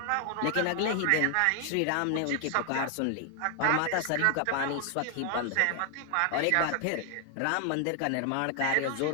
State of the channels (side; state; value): both; different; correlation 0.00